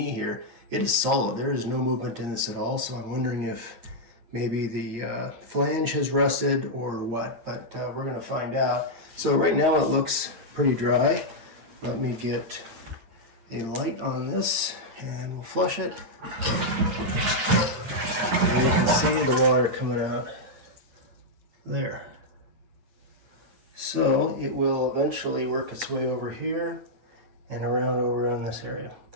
here. It is solid. There is no movement in this at all. So I'm wondering if maybe the flange has rusted or what, but we're going to find out. So right now it looks pretty dry. Let me get a light on this and we'll flush it. And you can see the water coming out there. So it will eventually work its way over here and over in this area.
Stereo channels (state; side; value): late; left; 9.1 ms